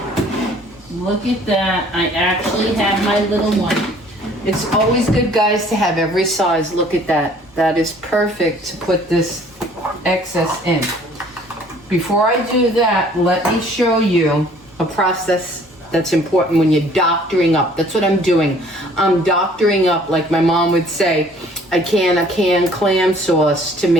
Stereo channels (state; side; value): normal; both; correlation 0.56